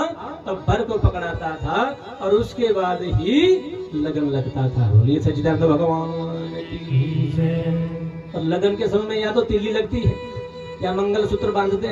तब वर को पकड़ाता था, और उसके बाद ही लगन लगता था। बोलिए सच्चिदानंद भगवान की जय। और लगन के समय में या तो तिल्ली लगती है, या मंगलसूत्र बांधते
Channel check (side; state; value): both; identical; correlation 1.00